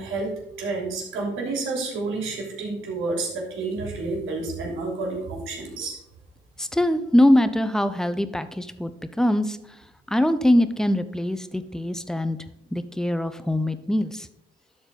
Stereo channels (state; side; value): normal; both; correlation 0.88